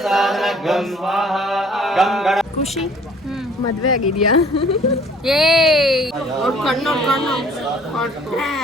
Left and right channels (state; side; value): normal; both; correlation 0.55